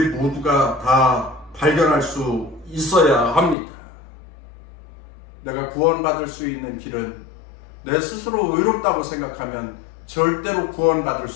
모두가 다 발견할 수 있어야 합니다. 내가 구원받을 수 있는 길은 내 스스로 의롭다고 생각하면 절대로 구원받을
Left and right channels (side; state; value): right; drops out; at 3.6 s